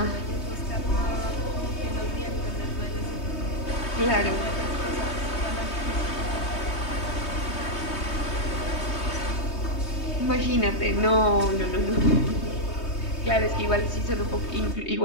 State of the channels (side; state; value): right; late; 3.2 ms